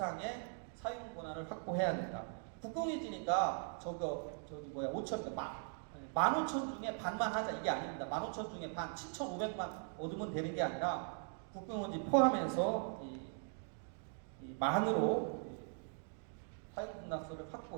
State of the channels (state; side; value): silent; left; 51 dB below the other